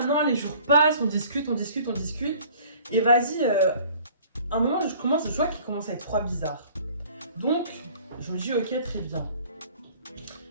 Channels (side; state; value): both; inverted; correlation -0.52